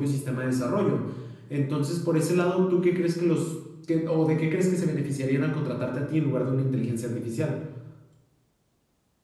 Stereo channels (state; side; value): identical; both; correlation 1.00